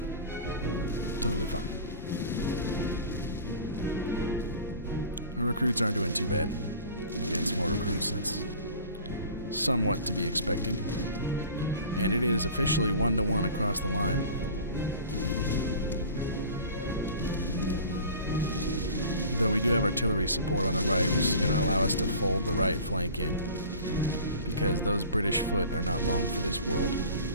Totally fine. Our recruits aren't doing too bad against more recruits. That's somewhat to be expected. And it is officially 1-to-1 across the line. Though we do have artillery support on the right, which is going to allow us to fold the right flank in. Because those British foot are not long for this world.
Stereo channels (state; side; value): inverted; both; correlation -0.41